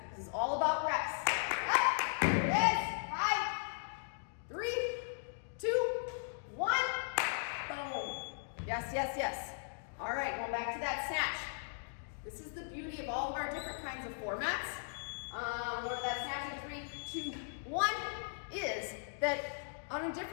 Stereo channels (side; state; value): right; silent; digital silence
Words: This is all about reps. Up. Here it is. 5, 3, 2, 1. Boom. Yes, yes, yes. All right, going back to that snatch. This is the beauty of all of our different kinds of formats. What that snatch in 3, 2, 1 is that on a